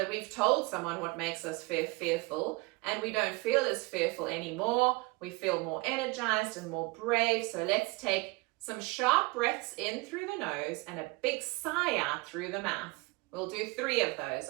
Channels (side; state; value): left; quieter; 25.6 dB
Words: we've told someone what makes us fearful, and we don't feel as fearful anymore. We feel more energized and more brave. So let's take some sharp breaths in through the nose and a big sigh out through the mouth. We'll do 3 of those.